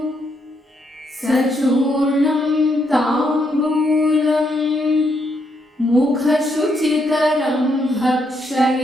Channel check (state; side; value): normal; both; correlation 0.77